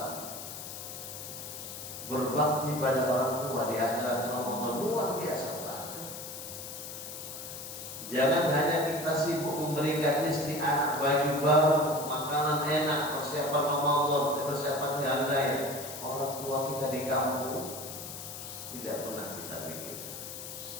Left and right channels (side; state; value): left; noise; hiss, 9 dB below the sound